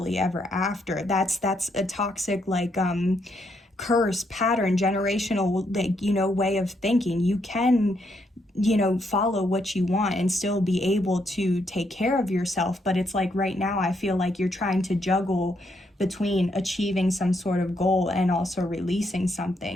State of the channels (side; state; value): both; normal; correlation 0.76